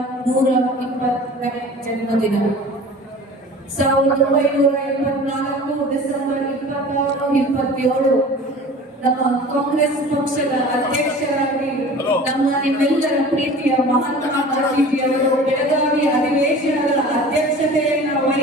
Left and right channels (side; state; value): both; normal; correlation 0.41